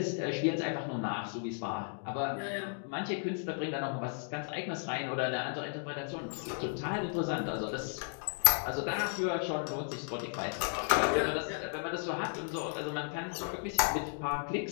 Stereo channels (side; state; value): right; silent; 55 dB below the other